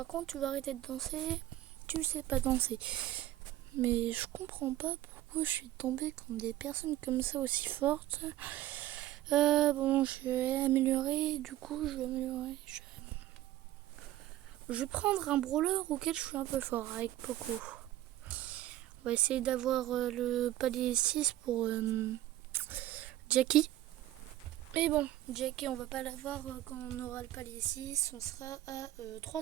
contre, tu vas arrêter de danser. Tu sais pas danser. Mais je comprends pas pourquoi je suis tombée contre des personnes comme ça aussi fortes. Bon, je vais améliorer. Du coup, je vais améliorer. Je vais prendre un brawler auquel je suis un peu fort, avec Poco. On va essayer d'avoir le palier 6 pour Jackie. Mais bon, Jackie, on va pas l'avoir quand on aura le palier 6. On sera à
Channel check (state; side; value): quieter; left; 14.5 dB